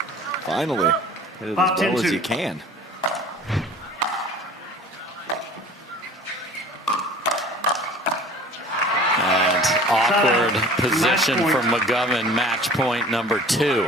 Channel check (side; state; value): both; normal; correlation 0.45